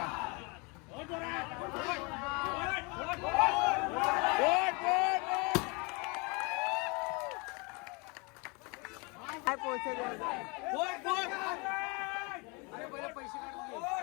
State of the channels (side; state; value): right; quieter; 30.0 dB